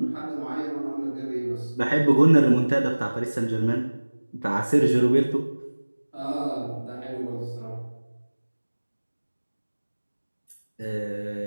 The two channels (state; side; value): inverted; both; correlation -1.00